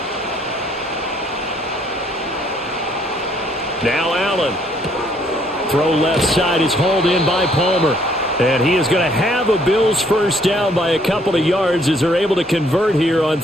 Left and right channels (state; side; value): normal; both; correlation 0.65